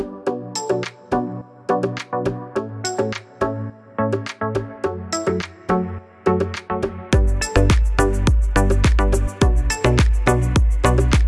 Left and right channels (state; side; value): identical; both; correlation 1.00